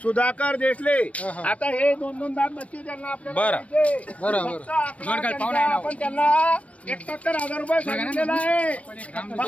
सुधाकर देशले. आता हे 2-2 दात बच्चे त्यांना आपल्याला आपण त्यांना 71,000 रुपये सांगितलेला आहे.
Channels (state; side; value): late; right; 0.065 ms